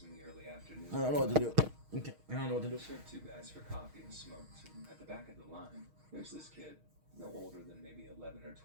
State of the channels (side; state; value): left; late; 6.4 ms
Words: in the early afternoon. I don't know what to do. Okay, I don't know what to do. I served 2 guys for coffee and smoked, and at the back of the line, there's this kid, no older than maybe 11 or